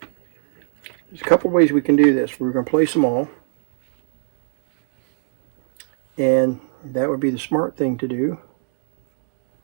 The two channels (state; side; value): silent; left; digital silence